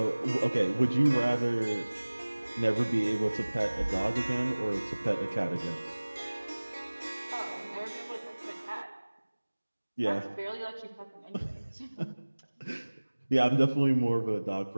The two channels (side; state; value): both; inverted; correlation -1.00